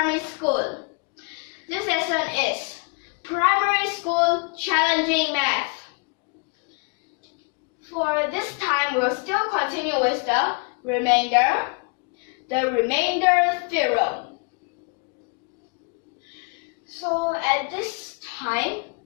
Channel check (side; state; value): right; quieter; 35.8 dB